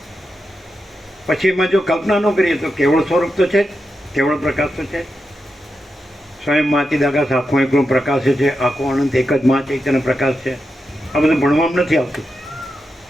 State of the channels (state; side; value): normal; both; correlation 0.88